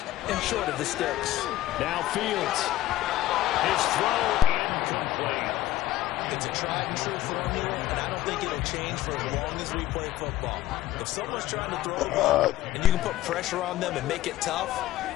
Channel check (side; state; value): right; quieter; 14.2 dB